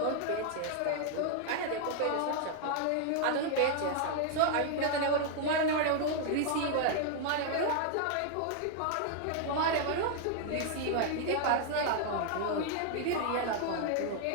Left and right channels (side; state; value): both; different; correlation 0.00